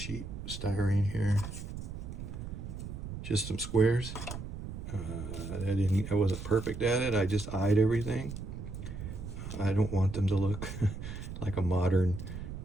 styrene here, just some squares. I wasn't perfect at it. I just eyed everything. I don't want them to look like a modern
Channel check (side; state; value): right; noise; rumble, 8 dB below the sound